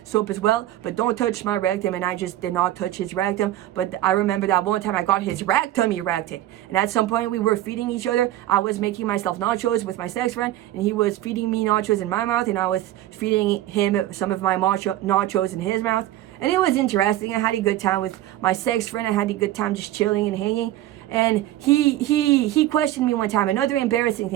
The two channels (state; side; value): quieter; left; 14.1 dB